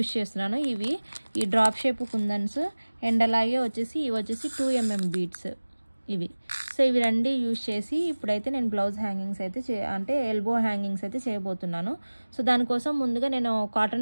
చేస్తున్నాను. ఇవి ఈ డ్రాప్ షేప్ కుందన్స్ అండ్ అలాగే వచ్చేసి ఇవి వచ్చేసి 2mm బీడ్స్ ఇవి. సో ఇవి రెండు యూజ్ చేసి ఇప్పుడైతే నేను బ్లౌజ్ హ్యాంగింగ్స్ అయితే అంటే ఎల్బో హ్యాంగింగ్స్ అయితే చేయబోతున్నాను. సో దానికోసం ముందుగా నేను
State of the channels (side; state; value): both; inverted; correlation -1.00